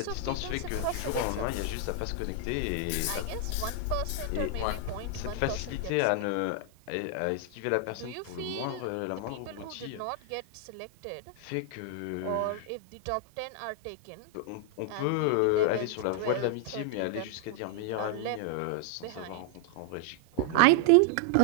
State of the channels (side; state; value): both; different; correlation 0.00